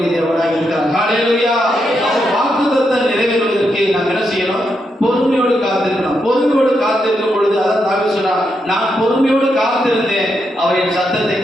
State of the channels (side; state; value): both; normal; correlation 0.82